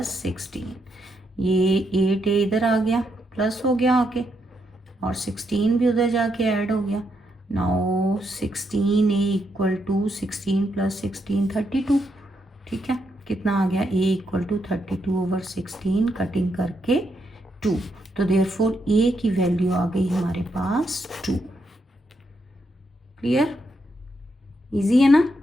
16, ये 8a इधर आ गया प्लस हो गया आके, और 16 भी उधर जाके ऐड हो गया। Now 16a equal to 16 plus 16 32। ठीक है, कितना आ गया a equal to 32 over 16, cutting करके 2, तो देयरफॉर a की वैल्यू आ गई हमारे पास 2। क्लियर, इजी है ना,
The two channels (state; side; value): normal; both; correlation 0.79